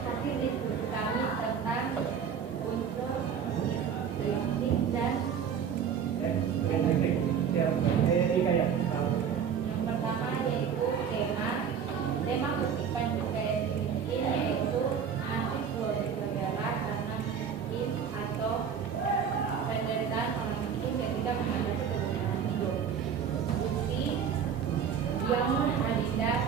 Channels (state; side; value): quieter; left; 7.4 dB